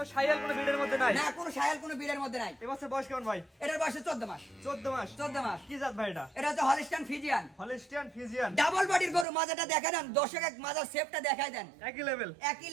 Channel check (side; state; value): left; drops out; at 9.2 s